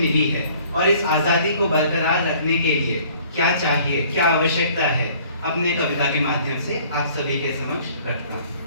है और इस आज़ादी को बरकरार रखने के लिए क्या चाहिए, क्या आवश्यकता है, अपने कविता के माध्यम से आप सभी के समक्ष रखता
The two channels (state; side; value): inverted; both; correlation -0.55